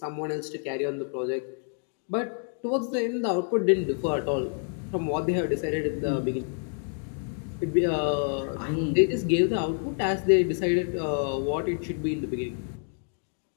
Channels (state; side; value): silent; right; 56 dB below the other